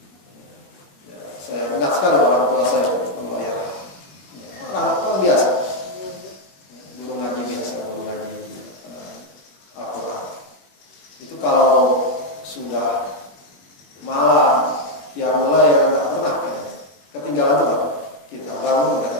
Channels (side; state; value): right; late; 21 ms